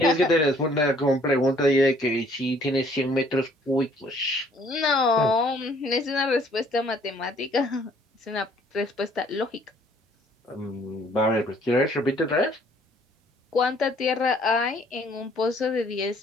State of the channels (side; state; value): both; normal; correlation 0.60